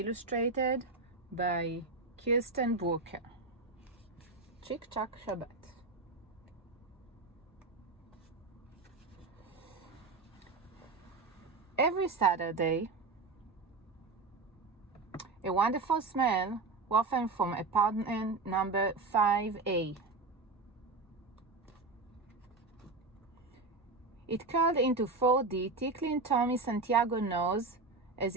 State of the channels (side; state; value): left; quieter; 3.8 dB